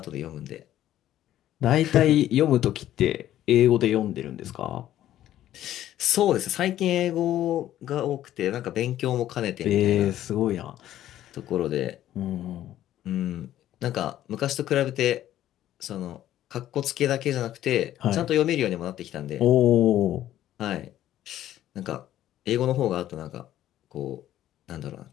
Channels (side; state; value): right; quieter; 12.6 dB